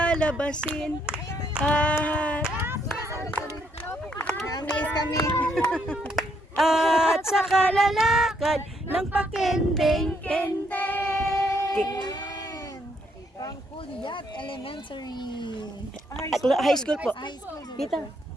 Na-amaze kami. At sa kalalakad ng pakendeng-kendeng. Pangkulyat Elementary. High school po. High school. Dito.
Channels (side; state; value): both; normal; correlation 0.72